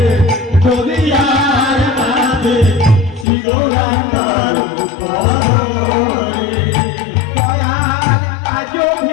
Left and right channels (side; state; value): right; drops out; at 3.2 s